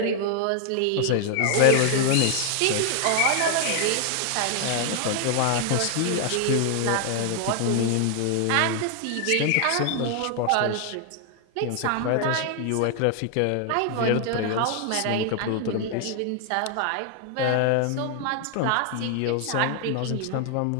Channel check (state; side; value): different; both; correlation 0.00